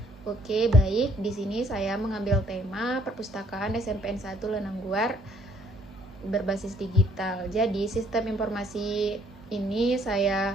Oke, baik. Di sini saya mengambil tema perpustakaan SMPN 1 Lenangguar berbasis digital. Jadi, sistem informasi ini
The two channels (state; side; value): normal; both; correlation 0.64